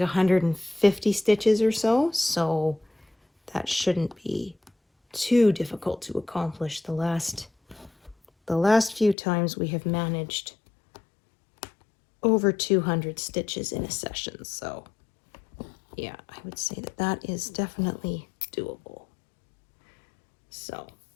stitches or so, so that shouldn't be too difficult to accomplish. The last few times we have managed over 200 stitches in a session, so yeah, I would say that that is definitely doable. So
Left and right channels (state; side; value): drops out; right; at 9.2 s